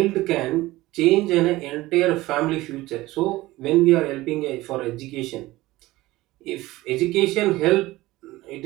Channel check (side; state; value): left; quieter; 18.4 dB